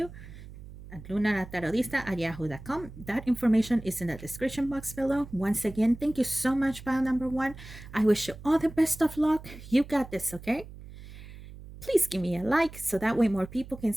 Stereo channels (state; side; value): noise; right; hum, 15 dB below the sound